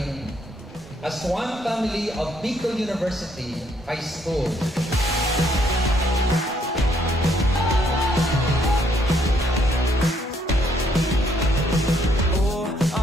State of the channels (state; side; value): normal; both; correlation 0.70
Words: as one family of Bicol University High School. Oh,